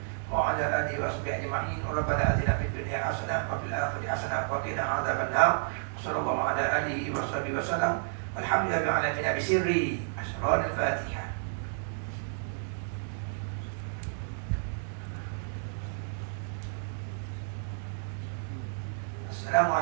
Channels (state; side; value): silent; left; digital silence